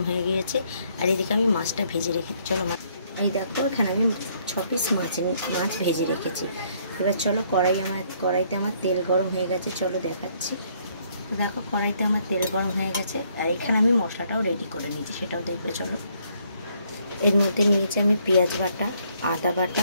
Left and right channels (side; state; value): both; inverted; correlation -0.68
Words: হয়ে গিয়েছে আর এদিকে আমি মাছটা ভেজে রেখেছি। চলো এই দেখো এখানে আমি 6 পিস মাছ ভেজে রেখেছি। এবার চলো কড়াইতে আমার তেল গরম হয়ে গেছে, চলো দেখাচ্ছি। দেখো কড়াইতে আমার তেল গরম হয়ে গেছে আর এখানে আমি মশলাটাও রেডি করে নিয়েছি, সেটাও দেখবে চলো। এর মধ্যে নিয়েছি আমি পেঁয়াজ বাটা, আদা